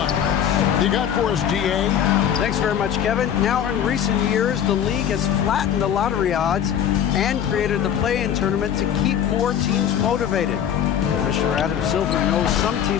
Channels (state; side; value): quieter; right; 9.3 dB